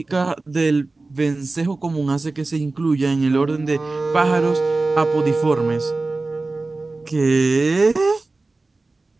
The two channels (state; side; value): quieter; left; 3.4 dB